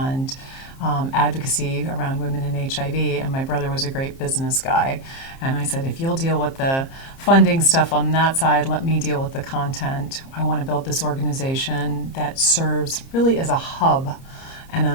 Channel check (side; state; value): right; late; 30 ms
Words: advocacy around women in HIV, and my brother was a great business guy. And I said, if you'll deal with the funding stuff on that side, let me deal with the content. I want to build this organization that serves really as a hub and